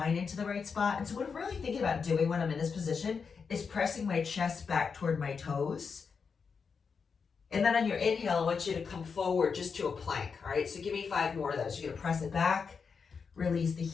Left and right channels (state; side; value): quieter; right; 5.7 dB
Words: into the right spot. And so what I'm really thinking about doing when I'm in this position is pressing my chest back toward my toes. And then on your inhale, I want you to come forward just to a plank. All right, so give me 5 more of those. You're going to press it back, release the